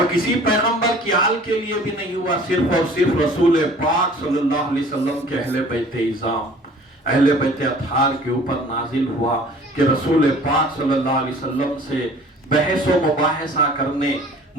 کسی پیغمبر کی آل کے لیے بھی نہیں ہوا، صرف اور صرف رسول پاک صلی اللہ علیہ وسلم کے اہل بیت اعظام، اہل بیت اطہار کے اوپر نازل ہوا کہ رسول پاک صلی اللہ علیہ وسلم سے بحث و مباحثہ کرنے،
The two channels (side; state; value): both; normal; correlation 0.49